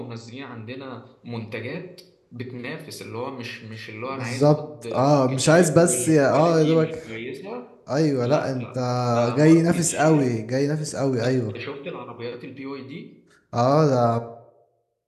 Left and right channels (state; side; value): identical; both; correlation 1.00